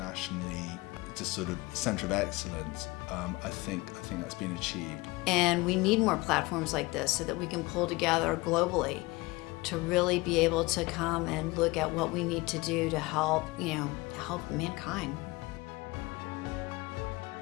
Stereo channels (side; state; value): right; quieter; 22.6 dB